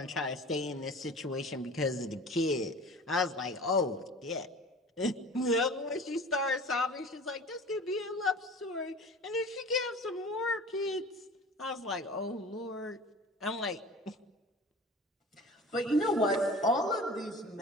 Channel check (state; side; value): normal; both; correlation 0.40